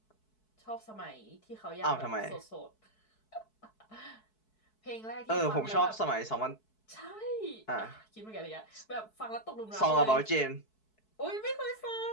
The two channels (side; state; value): right; late; 4.6 ms